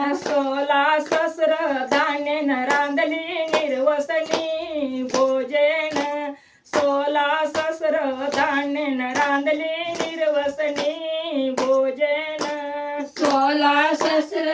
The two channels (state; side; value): identical; both; correlation 1.00